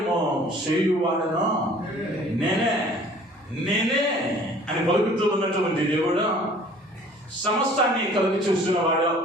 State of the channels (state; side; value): normal; both; correlation 0.51